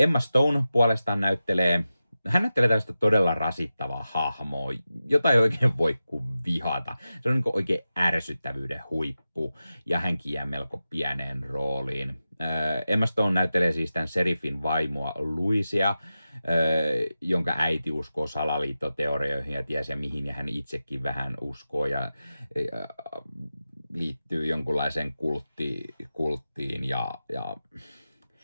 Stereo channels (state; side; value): inverted; both; correlation -0.93